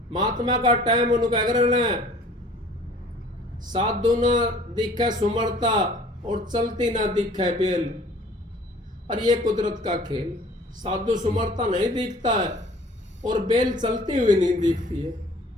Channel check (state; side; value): normal; both; correlation 0.51